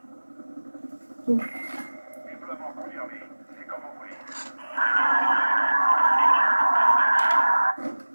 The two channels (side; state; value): both; inverted; correlation -1.00